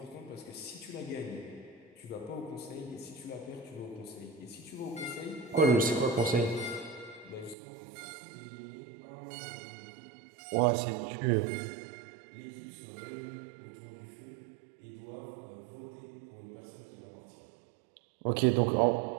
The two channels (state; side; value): drops out; left; at 7.6 s